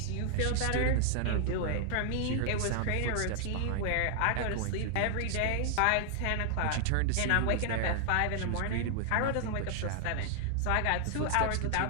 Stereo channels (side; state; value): both; different; correlation 0.00